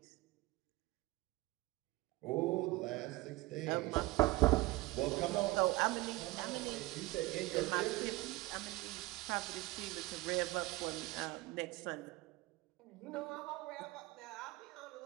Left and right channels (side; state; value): left; quieter; 20.5 dB